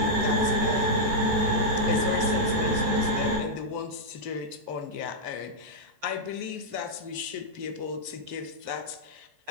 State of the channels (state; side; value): late; left; 14 ms